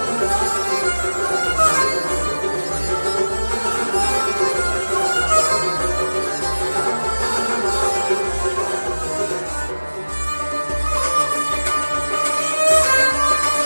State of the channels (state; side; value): inverted; both; correlation -1.00